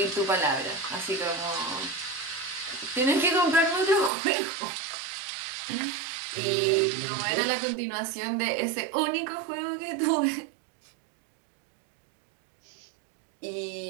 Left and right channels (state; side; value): drops out; left; at 4.1 s